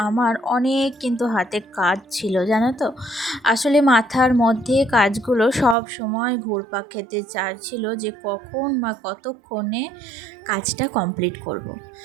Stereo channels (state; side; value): drops out; left; at 5.8 s